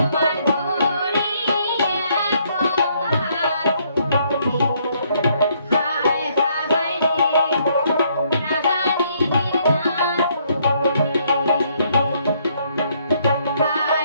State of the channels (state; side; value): inverted; both; correlation -0.69